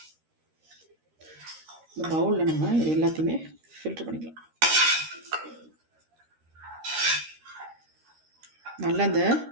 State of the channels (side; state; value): left; late; 13 ms